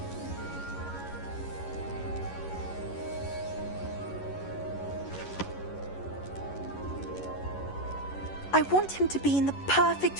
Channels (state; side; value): late; right; 11 ms